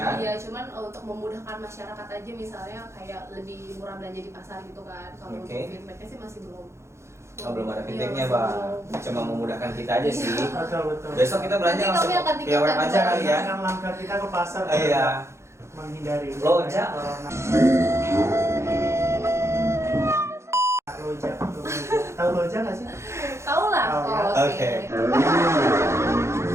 Iya, cuman untuk memudahkan masyarakat aja misalnya kayak lebih murah belanja di pasar gitu kan. Kalau Oke. untuk feedbacknya sih masih belum. Oh belum ada Iya, feedbacknya masih Bang. belum. Cuma memudahkan kita aja sih. Betul, betul. Besok kita belanja Nanti langsung kami akan via web tingkatkan aja kali ya. Kan langkah kita ke pasar. Iya. Menghindari Loja. corona. Loja. Tahu Loja nggak sih? Tahu lah. Tahu ya. Oh, Oke. Iya.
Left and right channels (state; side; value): late; left; 0.13 ms